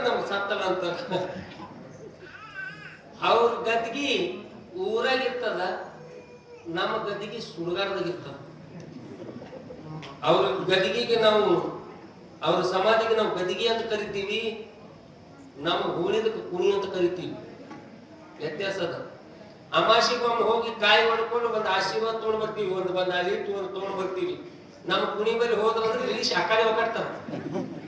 ನಮ್ಗೆ ಸತ್ತಲ್ಲ ಅಂತಾರ. ಅವ್ರ ಗದ್ಗಿ ಊರಾಗಿರ್ತದ, ನಮ್ಮ ಗದ್ದಿಗೆ ಸುಡುಗಾಡದಾಗಿರ್ತದ. ಅವ್ರ ಗದಿಗೆಗೆ ನಾವು, ಅವ್ರ ಸಮಾಧಿಗೆ ನಾವು ಗದಿಗೆ ಅಂತ ಕರಿತೀವಿ, ನಮ್ಮ ಹೂಳಿದಕ್ಕೆ ಕುಣಿ ಅಂತ ಕರಿತೀವಿ. ವ್ಯತ್ಯಾಸ ಅದ. ಅಮಾಸಿಗೊಮ್ಮೆ ಹೋಗಿ ಕಾಯಿ ಹೊಡ್ಕೊಂಡು ಬಂದು ಆಶೀರ್ವಾದ ತೊಗೊಂಡ್ ಬರ್ತೀವಿ, ಬಂದು ಅಲಿಟ್ಟು ತೊಗೊಂಡ್ ಬರ್ತೀವಿ. ನಮ್ಮ ಕುಣಿ ಬಳಿ ಹೋದ್ರಂದ್ರೆ ಇಳಿಸಿ ಆ ಕಡೆ ಒಕ್ಕಾಡ್ತಾರ,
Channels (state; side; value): identical; both; correlation 1.00